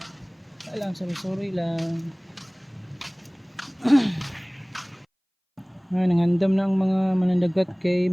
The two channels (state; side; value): identical; both; correlation 1.00